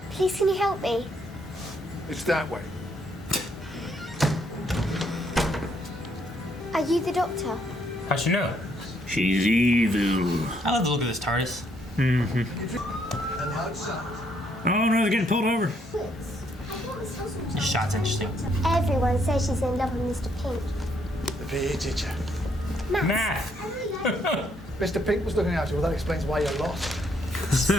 Please, can you help me? It's that way. Are you the doctor? How'd you know? She's evil. I love the look of this TARDIS. Mm-hmm. Oh no, they're getting pulled over. This shot's interesting. Everyone says she's in love with Mr. Pink. The PE teacher. Math. Mr. Pink was looking after you. Well, that explains why you're lost.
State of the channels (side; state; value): both; normal; correlation 0.71